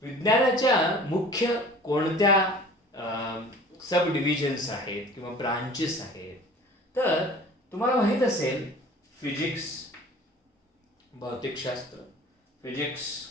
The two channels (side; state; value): both; normal; correlation 0.45